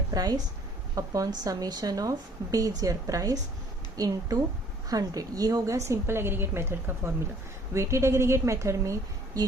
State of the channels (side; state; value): both; normal; correlation 0.57